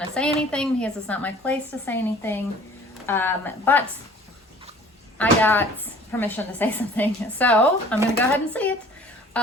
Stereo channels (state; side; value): normal; both; correlation 0.49